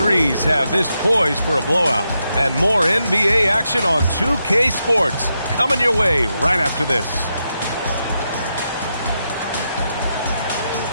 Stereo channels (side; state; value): both; inverted; correlation -0.84